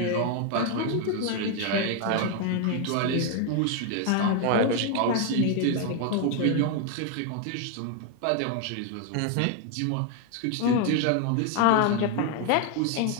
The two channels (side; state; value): both; different; correlation 0.01